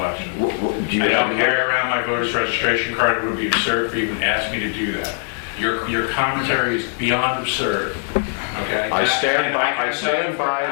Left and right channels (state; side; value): silent; right; 65 dB below the other